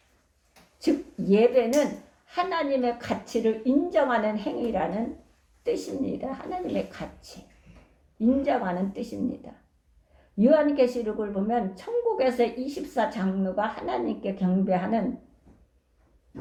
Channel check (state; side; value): identical; both; correlation 1.00